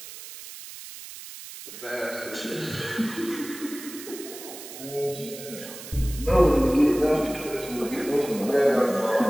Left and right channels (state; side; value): noise; right; hiss, 13 dB below the sound